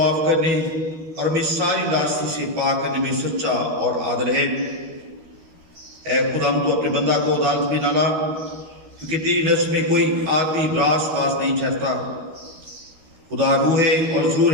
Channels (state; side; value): late; left; 13 ms